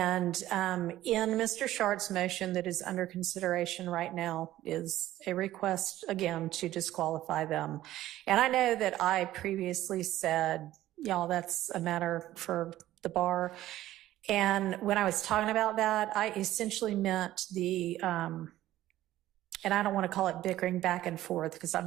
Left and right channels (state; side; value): quieter; left; 14.4 dB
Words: in Mr. Shart's motion that is under consideration right now is a request, again, to disqualify them. And I know that I previously said, y'all, that's a matter for the bar. And when I was talking about that, I essentially meant the, and I don't want to call it bickering back and forth, because I'm